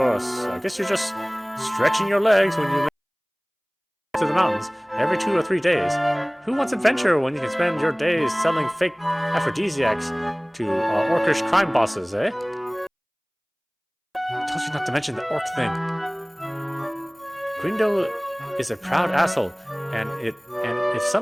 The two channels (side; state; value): both; identical; correlation 1.00